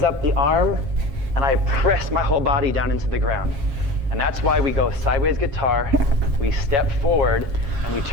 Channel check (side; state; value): left; late; 7.4 ms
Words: up the arm, and I press my whole body down into the ground. And that's why we go sideways guitar, we step forward, and we